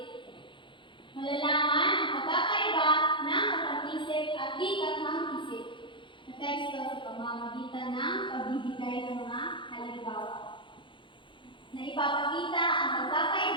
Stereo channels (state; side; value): late; right; 0.24 ms